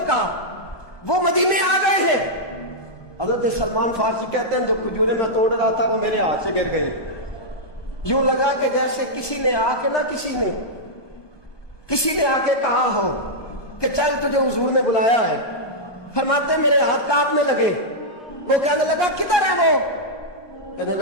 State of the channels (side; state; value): right; late; 1.2 ms